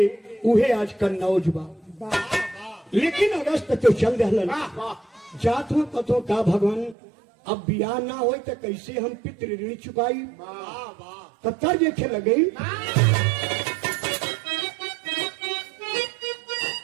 उहे आज कन्नौज बा। लेकिन अगस्त तो चल रहलन जात हो कतो का भगवान अब बियाह ना हो तो कैसे हम पितृ ऋण चुकाई। तब तक देखे लगे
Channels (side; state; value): left; drops out; at 7.0 s